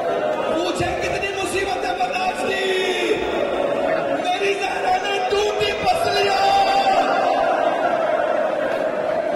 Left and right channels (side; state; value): both; identical; correlation 1.00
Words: पूछे कितनी मुसीबतें बर्दाश्त की, मेरी जहरा ने टूटी पसलियां।